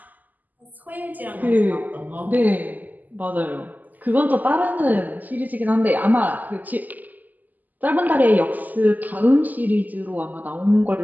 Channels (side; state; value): left; late; 0.083 ms